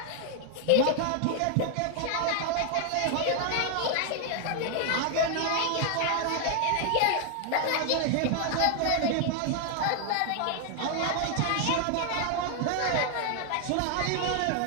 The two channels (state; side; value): different; both; correlation 0.00